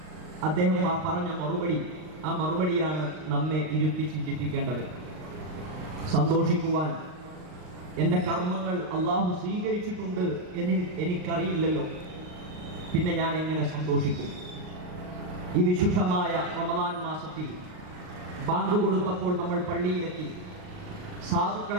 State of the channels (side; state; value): left; late; 39 ms